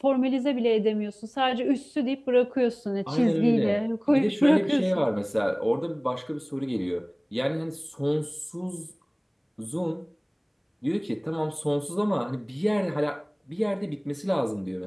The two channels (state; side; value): identical; both; correlation 1.00